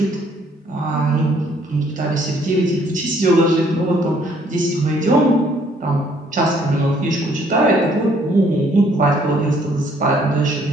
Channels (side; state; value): both; normal; correlation 0.63